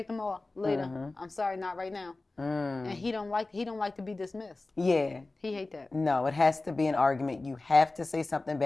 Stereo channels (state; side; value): quieter; right; 3.2 dB